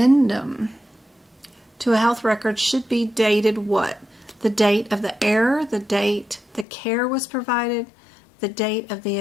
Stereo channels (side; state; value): right; drops out; at 6.7 s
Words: to a health record should be dated what? The date of the error, the date the care was provided, the date of